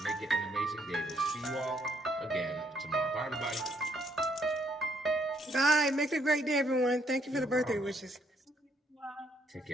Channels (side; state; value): both; normal; correlation 0.70